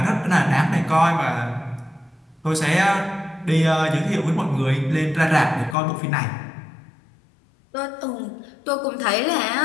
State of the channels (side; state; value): right; drops out; at 5.8 s